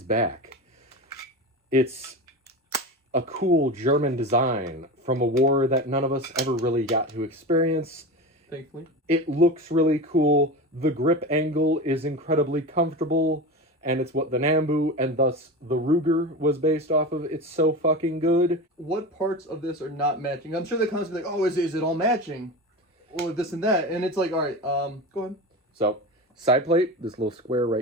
back. It's a cool German design from a war that none of us ever really got to experience. Thankfully. It looks really cool. The grip angle is incredibly comfortable, and it's what the Nambu and thus the Ruger was based off of. It's so fucking good. What parts of this are not matching? I'm sure they're constantly like, oh, is it all matching? Or this and that. And it's like, all right, go ahead. So, side plate, this little square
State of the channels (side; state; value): both; normal; correlation 0.26